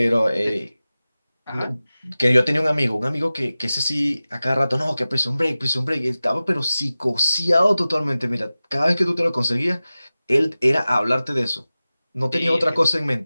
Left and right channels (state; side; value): inverted; both; correlation -0.96